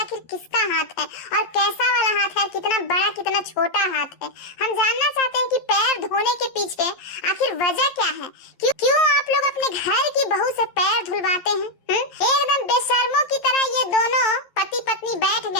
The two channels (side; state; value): right; late; 11 ms